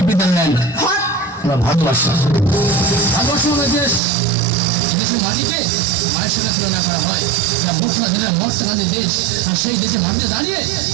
the land. আমরা ভারতবর্ষ আমাদের দেশ। এই দেশের মাটিকে মায়ের সাথে তুলনা করা হয়। এটা মুসলিম যেটা মর টাকানের দেশ, আর সেই দেশে মাটিতে দাঁড়িয়ে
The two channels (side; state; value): left; drops out; at 4.0 s